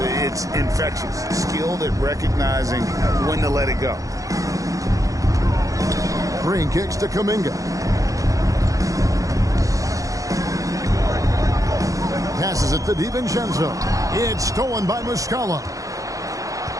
infectious. Skilled at recognizing when to let it go. Green kicks to Kuminga. Passes it to DiVincenzo. It's stolen by Muscala.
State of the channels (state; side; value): late; left; 0.16 ms